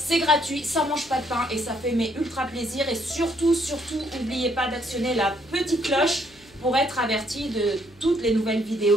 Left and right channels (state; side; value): noise; left; hum, 28 dB below the sound